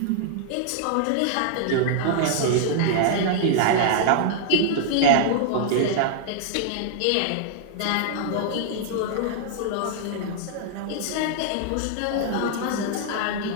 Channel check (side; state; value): both; different; correlation -0.01